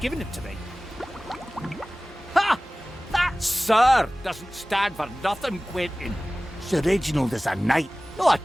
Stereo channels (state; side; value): normal; both; correlation 0.98